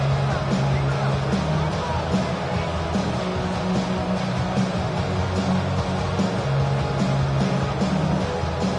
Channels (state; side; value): identical; both; correlation 1.00